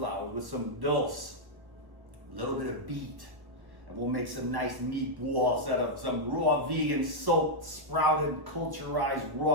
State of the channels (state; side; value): late; left; 1.1 ms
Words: with some dulse, a little bit of beet. And we'll make some nice meatballs out of some raw vegan, soaked, sprouted, culturized